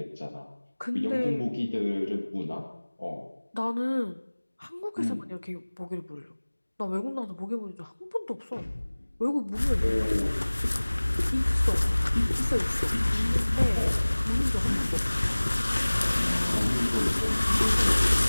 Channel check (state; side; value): inverted; both; correlation -1.00